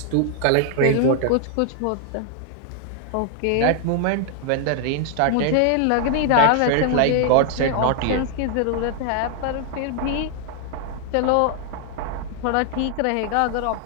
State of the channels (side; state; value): both; different; correlation 0.00